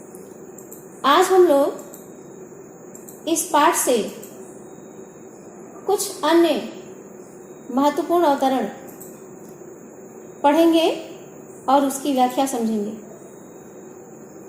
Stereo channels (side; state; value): both; identical; correlation 1.00